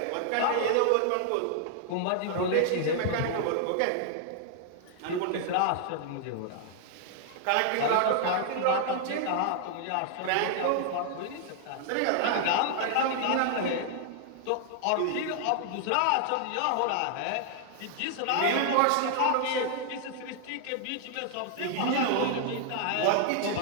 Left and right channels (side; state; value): both; different; correlation 0.00